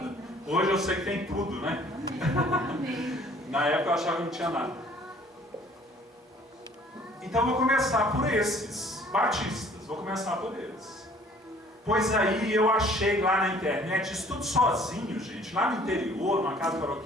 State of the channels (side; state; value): both; normal; correlation 0.55